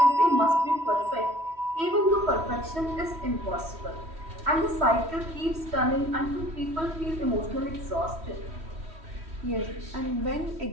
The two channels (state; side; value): late; left; 3.1 ms